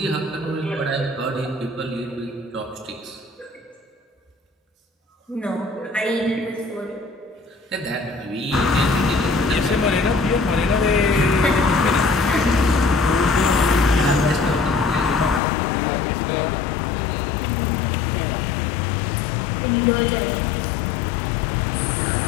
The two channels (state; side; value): drops out; right; at 15.4 s